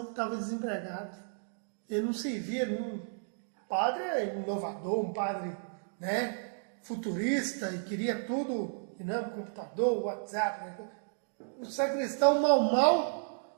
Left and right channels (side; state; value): left; silent; digital silence